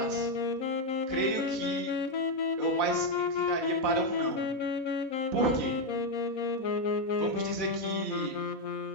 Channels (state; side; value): late; right; 4.1 ms